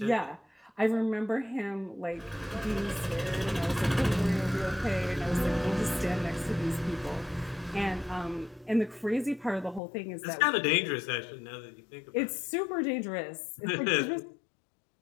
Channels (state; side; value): drops out; right; at 9.8 s